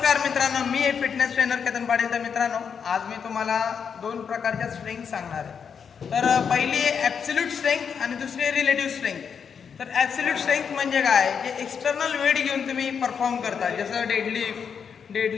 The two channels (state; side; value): quieter; right; 6.8 dB